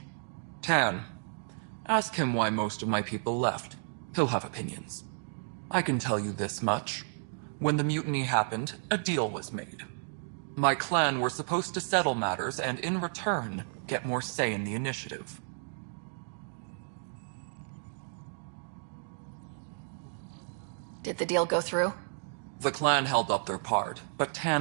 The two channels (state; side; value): silent; left; digital silence